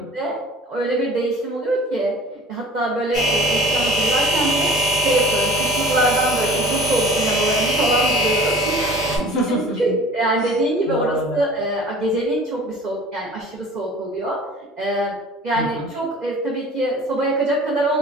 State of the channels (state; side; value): normal; both; correlation 0.45